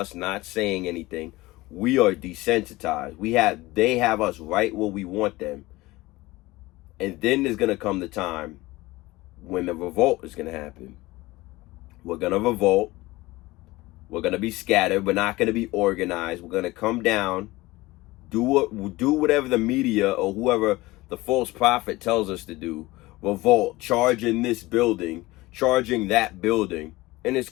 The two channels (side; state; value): right; quieter; 20.0 dB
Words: not saying anything, we are desensitized. They have us right where we want them. And then there's going to come the time when the revolt is going to happen. We're going to revolt. We're going to be scattered. We're not going to be organized. We're going to come down, do whatever the media or whoever the false prophet tells us to do. Revolt, charging this building, charging that building, and it's